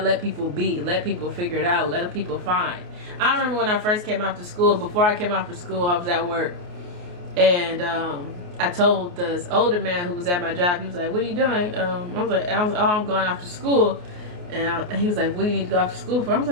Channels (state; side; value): late; left; 28 ms